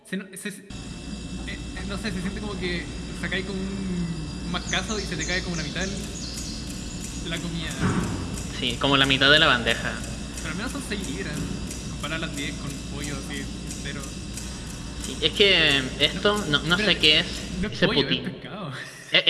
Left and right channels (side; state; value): both; identical; correlation 1.00